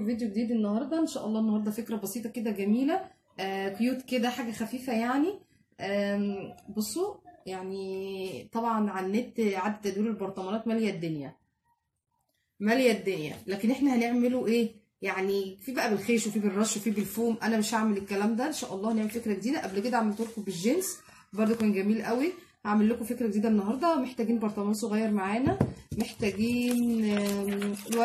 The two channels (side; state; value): both; identical; correlation 1.00